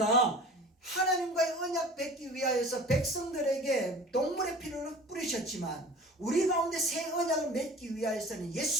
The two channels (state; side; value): normal; both; correlation 0.42